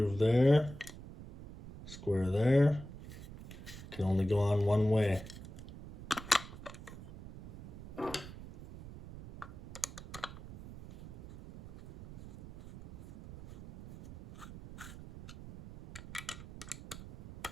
there. Square there. Can only go on one way.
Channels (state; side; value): noise; right; rumble, 14 dB below the sound